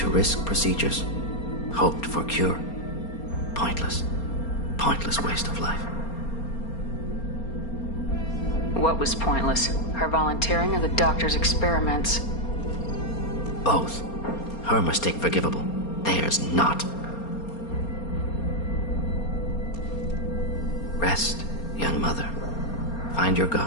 risk procedures. Hoped for cure. Pointless. Pointless waste of life. What was pointless? Her volunteering or the doctor's experiments? Both. Her mistake forgivable. Theirs not. Rest, young mother. Find your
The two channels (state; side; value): late; right; 4.3 ms